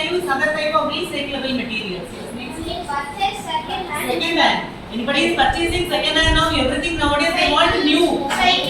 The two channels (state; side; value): identical; both; correlation 1.00